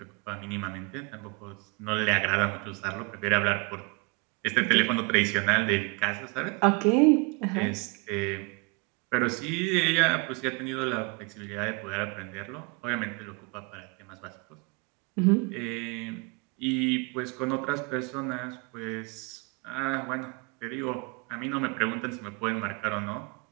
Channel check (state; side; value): quieter; left; 30.1 dB